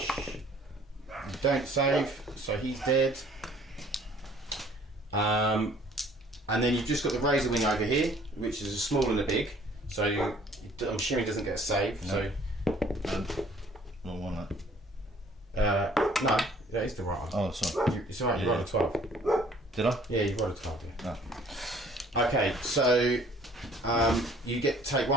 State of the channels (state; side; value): normal; both; correlation 0.56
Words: you don't save, so he's dead. And then you've just got the Razor Wing over here, which is a small and a big. So I'm assuming he doesn't get a save. No. So Wrong one. That. no, that is the right one. Oh, sorry. It's alright. You rolled a 12. Did I? Yeah, you rolled a 12. Yeah. No. Okay, so you take